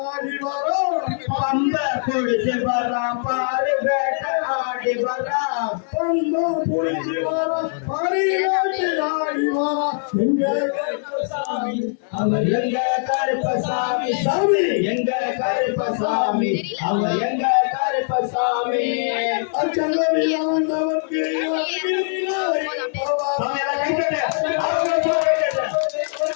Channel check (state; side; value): silent; right; digital silence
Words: வரான், பந்தா புடிச்சு வரா பாரி வேட்டை ஆடி வரான், பந்தா புடிச்சு வரா பாரி வேட்டை ஆடி வரான். எங்க கருப்பசாமி, அவர் எங்க கருப்பசாமி, சாமி எங்க கருப்பசாமி, அவர் எங்க கருப்பசாமி. அச்சங்கவியானவர்க்கு